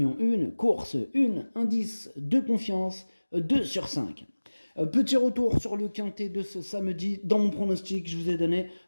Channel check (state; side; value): inverted; both; correlation -1.00